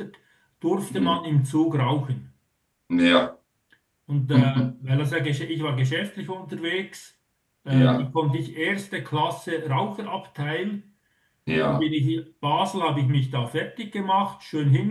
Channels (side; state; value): both; identical; correlation 1.00